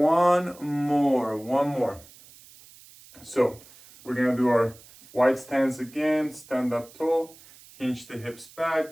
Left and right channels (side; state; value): right; noise; hiss, 23 dB below the sound